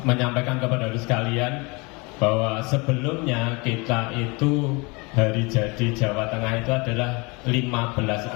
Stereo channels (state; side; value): quieter; right; 27.7 dB